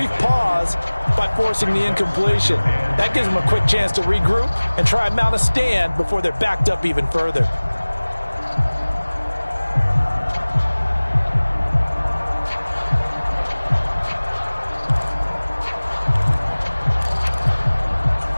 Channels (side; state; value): both; inverted; correlation -1.00